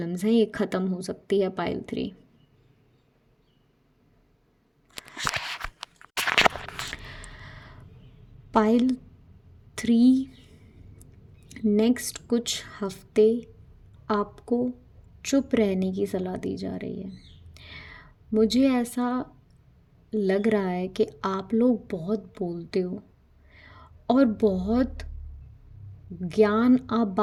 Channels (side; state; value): both; identical; correlation 1.00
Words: हैं ये ख़त्म हो सकती है पाइल 3। पाइल 3 नेक्स्ट कुछ हफ्ते आपको चुप रहने की सलाह दी जा रही है। मुझे ऐसा लग रहा है कि आप लोग बहुत बोलते हो और बहुत ज्ञान आप